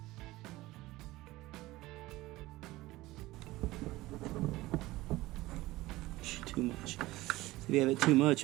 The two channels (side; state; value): left; quieter; 18.5 dB